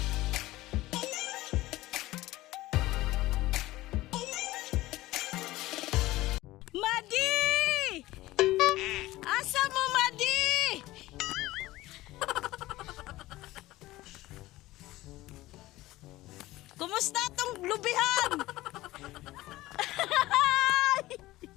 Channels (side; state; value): right; quieter; 17.6 dB